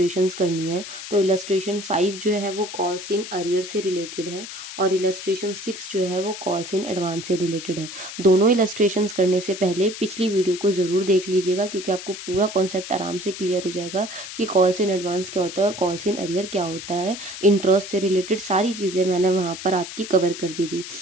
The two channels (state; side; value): noise; left; hiss, 10 dB below the sound